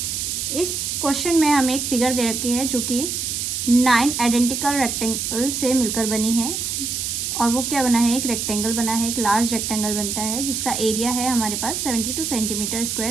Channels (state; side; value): noise; right; hiss, 2 dB below the sound